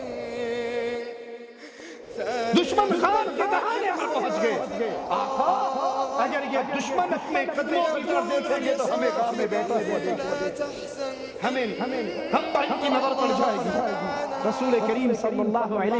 دشمن خان کے دہانے پر پہنچ گئے۔ آقا اگر یہ دشمن اپنے قدموں کی طرف دیکھیں گے تو ہمیں گھر میں بیٹھے ہوئے دیکھیں گے، ہم پر ان کی نظر پڑ جائے گی۔ رسول کریم صلی اللہ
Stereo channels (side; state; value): both; identical; correlation 1.00